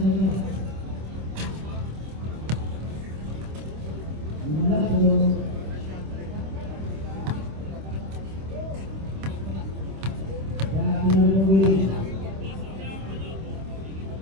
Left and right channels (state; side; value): late; left; 26 ms